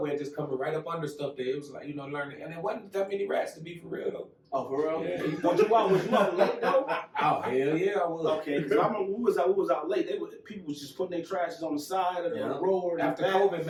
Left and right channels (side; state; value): both; identical; correlation 1.00